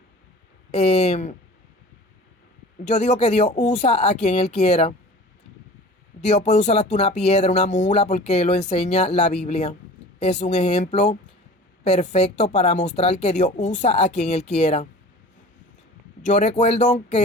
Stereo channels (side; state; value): both; normal; correlation 0.41